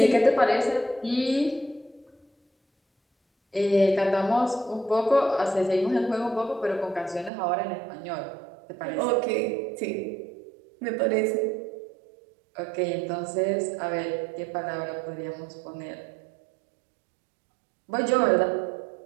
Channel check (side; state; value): left; drops out; at 7.3 s